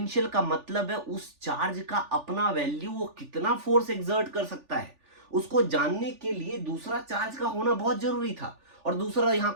का मतलब है उस चार्ज का अपना वैल्यू, वो कितना फोर्स एक्सर्ट कर सकता है, उसको जानने के लिए दूसरा चार्ज का होना बहुत जरूरी था, और दूसरा यहां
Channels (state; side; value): late; left; 3.4 ms